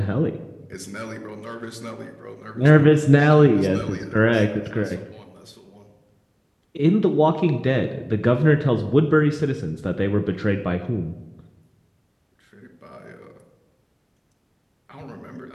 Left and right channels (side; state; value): both; identical; correlation 1.00